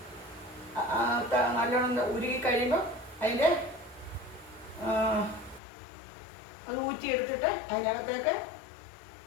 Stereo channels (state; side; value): drops out; right; at 5.6 s